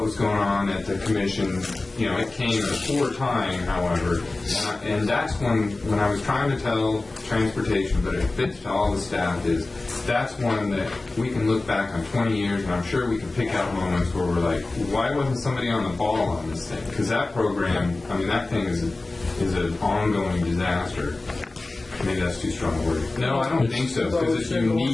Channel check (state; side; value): quieter; right; 3.2 dB